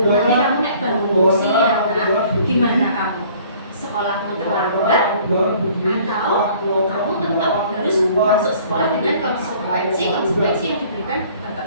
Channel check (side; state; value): both; inverted; correlation -0.54